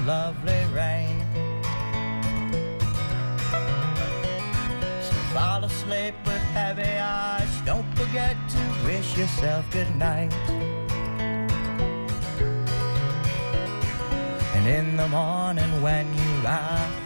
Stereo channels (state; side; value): inverted; both; correlation -1.00